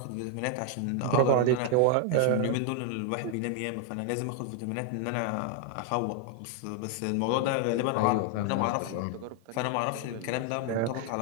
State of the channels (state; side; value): different; both; correlation 0.00